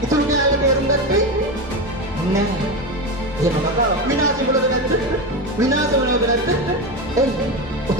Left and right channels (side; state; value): both; normal; correlation 0.18